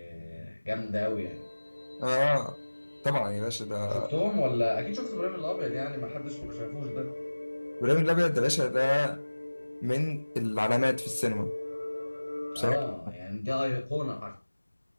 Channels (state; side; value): inverted; both; correlation -1.00